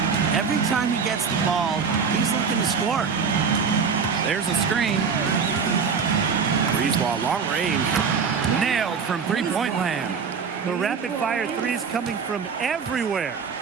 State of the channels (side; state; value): left; quieter; 5.9 dB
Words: Every time he gets the ball, he's looking to score. There's a screen. Brisebois long range. Nailed from three-point land. The rapid-fire threes coming from everywhere.